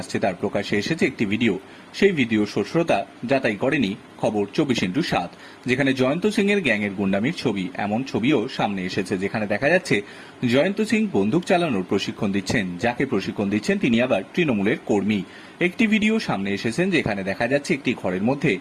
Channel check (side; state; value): both; identical; correlation 1.00